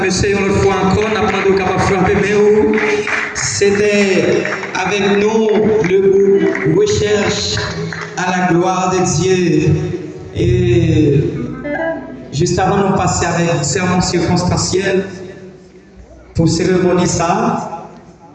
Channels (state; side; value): identical; both; correlation 1.00